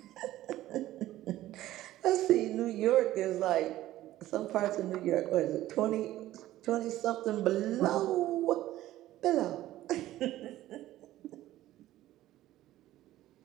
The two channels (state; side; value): quieter; left; 14.8 dB